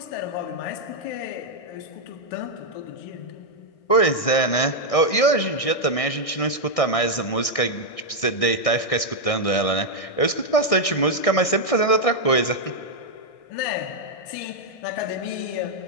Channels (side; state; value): right; late; 1.6 ms